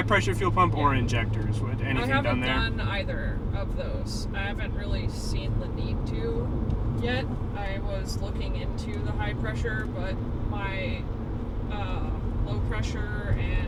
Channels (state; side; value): identical; both; correlation 1.00